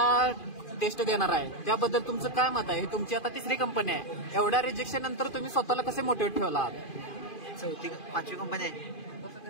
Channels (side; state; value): right; late; 2.5 ms